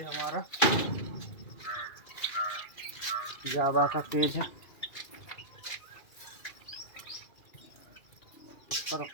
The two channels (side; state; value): right; late; 2.4 ms